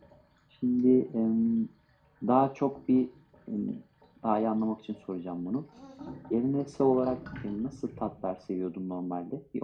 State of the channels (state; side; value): identical; both; correlation 1.00